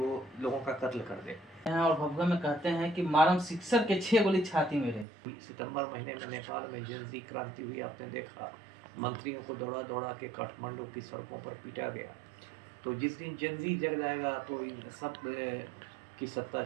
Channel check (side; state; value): left; drops out; at 5.1 s